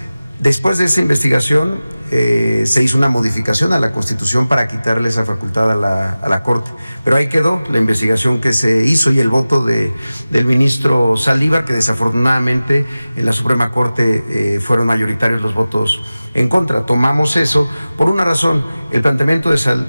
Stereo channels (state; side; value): inverted; both; correlation -0.97